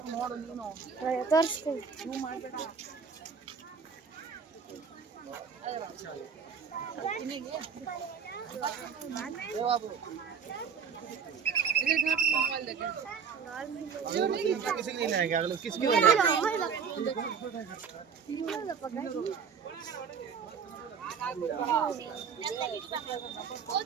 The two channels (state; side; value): quieter; left; 6.5 dB